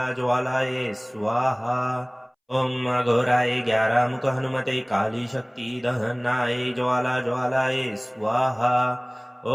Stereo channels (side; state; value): both; identical; correlation 1.00